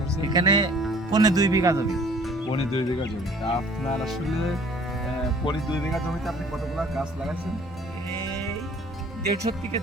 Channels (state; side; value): normal; both; correlation 0.53